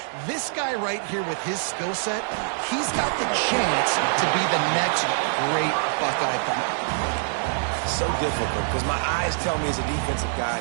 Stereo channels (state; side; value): silent; left; digital silence